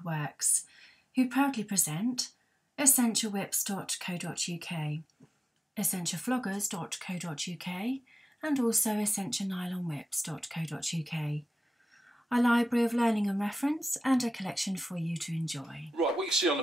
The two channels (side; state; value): both; normal; correlation 0.95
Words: Works, who proudly present essentiawhips.co.uk, essentiafloggers.co.uk and also essentianylonwhips.co.uk, a library of learning and reference and a collection for you to enjoy. Right, what you see on